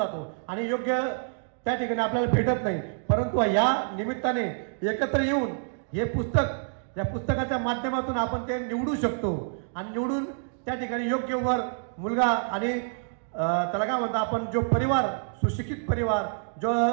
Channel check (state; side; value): silent; left; digital silence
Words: आणि योग्य त्या ठिकाणी आपल्याला भेटत नाही. परंतु या निमित्ताने एकत्र येऊन हे पुस्तक, या पुस्तकाच्या माध्यमातून आपण ते निवडू शकतो आणि निवडून त्या ठिकाणी योग्य वर मुलगा आणि त्याला काय म्हणतो आपण, जो परिवार, सुशिक्षित परिवार, जो